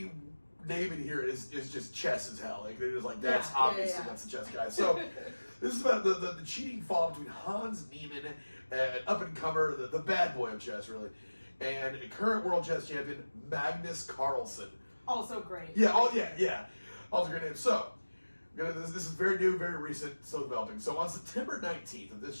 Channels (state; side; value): inverted; both; correlation -1.00